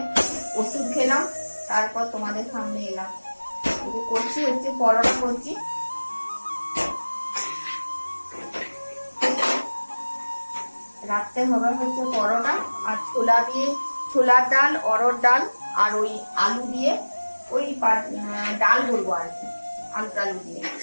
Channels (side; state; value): both; inverted; correlation -1.00